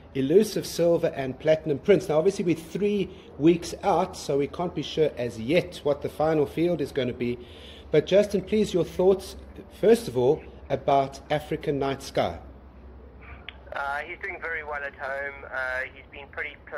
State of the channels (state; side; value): identical; both; correlation 1.00